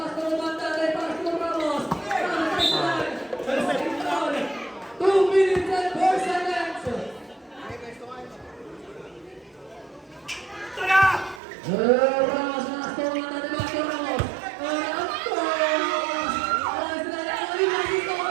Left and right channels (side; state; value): left; drops out; at 11.4 s